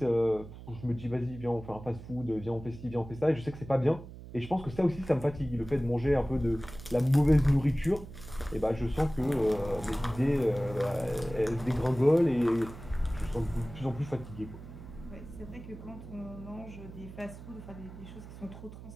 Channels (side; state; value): right; noise; hum, 14 dB below the sound